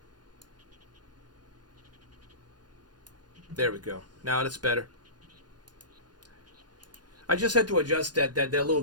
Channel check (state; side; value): late; left; 0.70 ms